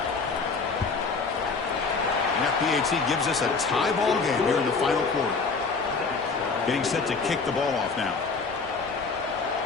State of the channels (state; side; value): quieter; right; 4.5 dB